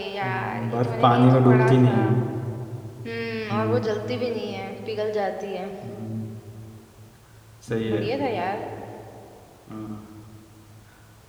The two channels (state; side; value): identical; both; correlation 1.00